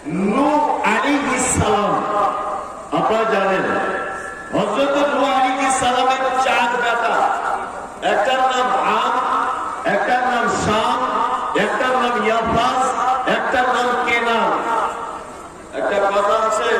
নূহ আলাইহিস সালাম। আপনারা জানেন হযরত নূহ আলাইহিস সালামের 4 বেটা, একটার নাম আম, একটার নাম শাম, একটার নাম ইয়াফাস, একটার নাম কেনান। একটা কথা আছে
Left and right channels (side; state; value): both; identical; correlation 1.00